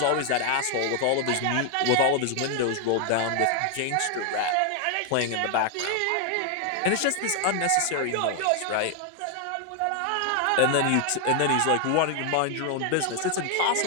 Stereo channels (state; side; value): different; both; correlation 0.00